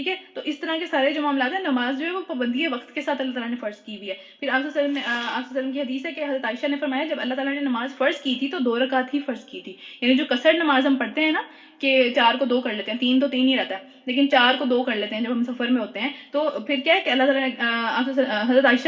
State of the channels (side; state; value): both; identical; correlation 1.00